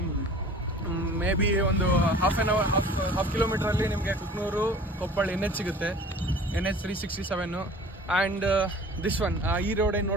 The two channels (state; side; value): normal; both; correlation 0.45